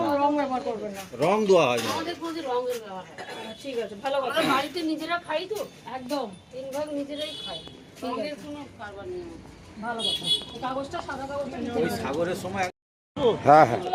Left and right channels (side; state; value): both; identical; correlation 1.00